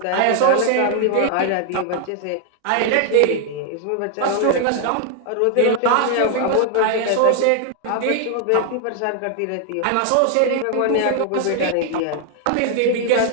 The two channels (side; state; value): both; different; correlation 0.00